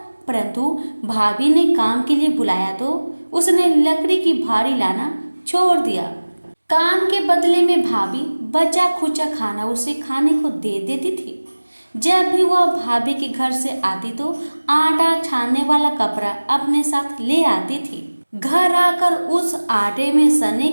परंतु भाभी ने काम के लिए बुलाया तो उसने लकड़ी की भारी लाना छोड़ दिया। काम के बदले में भाभी बचा खुचा खाना उसे खाने को दे देती थी। जब भी वह भाभी के घर से आती तो आटा छानने वाला कपड़ा अपने साथ ले आती थी। घर आकर उस आटे में सने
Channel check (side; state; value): both; inverted; correlation -1.00